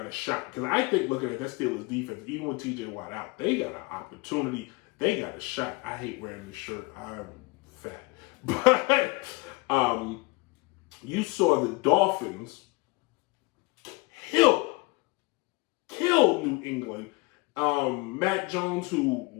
a shot. Because I think looking at that Steelers defense, even with TJ Watt out, they got an opportunity. They got a shot. I hate wearing this shirt. I'm fat. But you saw the Dolphins kill New England. Matt Jones, who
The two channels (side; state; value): right; quieter; 25.6 dB